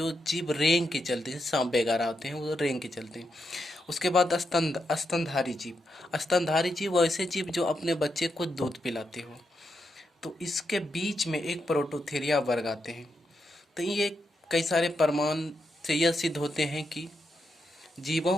जीव रेंग के चलते हैं, सांप वगैरह होते हैं वो रेंग के चलते हैं। उसके बाद स्तनधारी जीव। स्तनधारी जीव वैसे जीव जो अपने बच्चे को दूध पिलाते हो। तो इसके बीच में एक प्रोटोथीरिया वर्ग आते हैं। तो ये कई सारे प्रमाण से यह सिद्ध होते हैं कि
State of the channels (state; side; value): normal; both; correlation 0.83